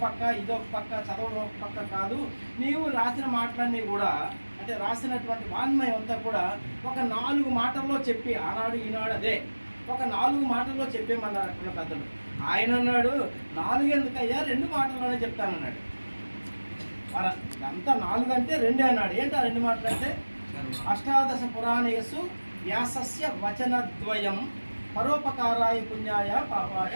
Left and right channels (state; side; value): inverted; both; correlation -1.00